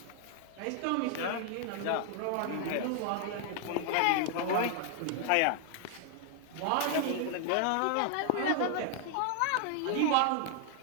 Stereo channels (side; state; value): both; different; correlation 0.00